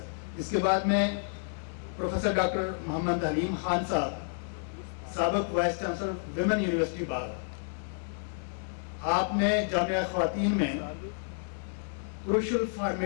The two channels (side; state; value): right; silent; digital silence